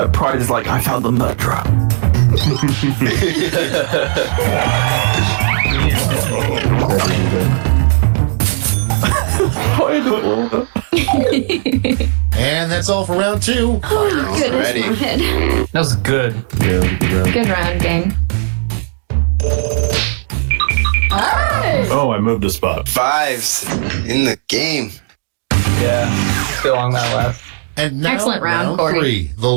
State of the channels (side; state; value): left; silent; digital silence